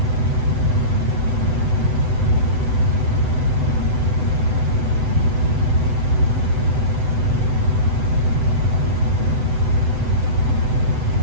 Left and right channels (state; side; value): late; left; 8.0 ms